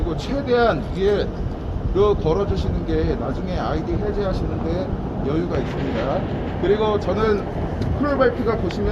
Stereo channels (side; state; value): both; identical; correlation 1.00